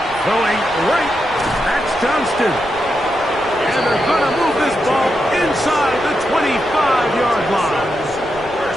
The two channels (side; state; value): right; noise; rumble, 19 dB below the sound